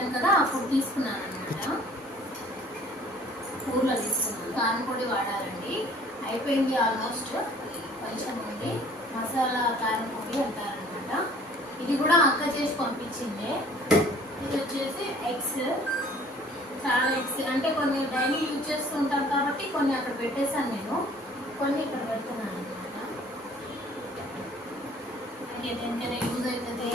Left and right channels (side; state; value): both; normal; correlation 0.54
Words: కదా, అప్పుడు తీసుకున్నాను అనమాట. ఊర్లో తీసుకున్నాను. కారం పొడి వాడాలండి, అయిపోయింది ఆల్మోస్ట్, కొంచెం ఉంది. మసాలా కారం పొడి అంటారనమాట. ఇది కూడా అక్క చేసి పంపించిందే. ఇది వచ్చేసి ఎగ్స్, చాలా ఎగ్స్ అంటే కొన్ని డైలీ యూజ్ చేస్తుంటాను కాబట్టి కొన్ని అక్కడ పెట్టేశాను నేను, కొన్ని ఇక్కడ పెడుతున్నాను అనమాట. దేనికైనా యూజ్ అవుతుంది,